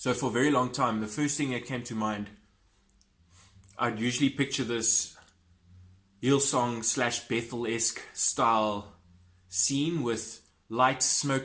for a very long time, the first thing that came to mind, I'd usually picture this Hillsong / Bethel-esque style scene with lights,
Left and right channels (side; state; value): both; identical; correlation 1.00